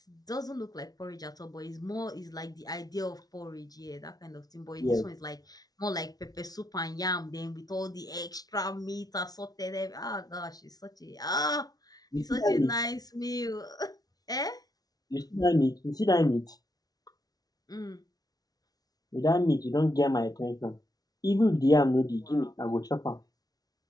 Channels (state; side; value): late; right; 0.19 ms